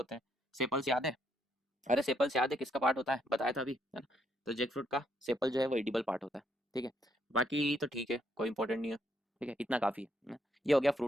हैं, सेपल्स याद है? अरे सेपल्स याद है किसका पार्ट होता है, बताया था अभी, है ना। तो जैक फ्रूट का सेपल जो है वो एडिबल पार्ट होता है, ठीक है। बाकी तो ठीक है, कोई इंपॉर्टेंट नहीं है, ठीक है, इतना काफ़ी है ना? ये हो गया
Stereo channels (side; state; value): both; normal; correlation 0.73